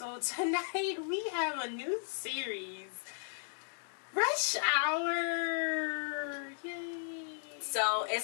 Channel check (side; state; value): right; silent; digital silence